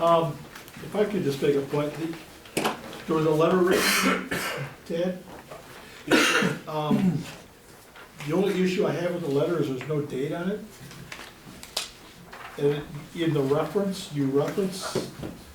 If I could just make a point, there was a letter written, Ted. The only issue I have with the letter is there's no date on it. And in the reference, you reference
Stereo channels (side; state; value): both; identical; correlation 1.00